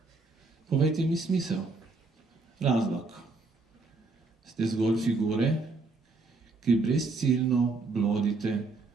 Povejte mi smisel. Razlog. Ste zgolj figure, ki brezciljno blodite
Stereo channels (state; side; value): quieter; left; 3.7 dB